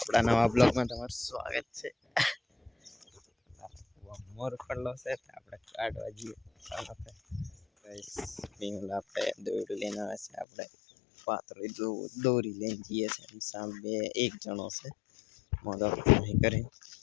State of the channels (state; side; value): drops out; right; at 10.5 s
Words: નવા બ્લોગમાં તમારું સ્વાગત છે. મોર પડલો છે, આપણે કાઢવા જઈએ. ગાઈસ, પીંગલ આપણે દોરી લઈને આવે છે, આપણે પાતળી દોરી લઈને જઈએ છીએ. સામે એક જણો છે, મોદો નહીં કરી